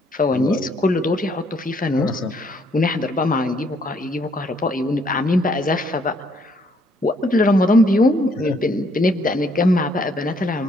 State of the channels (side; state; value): both; normal; correlation 0.68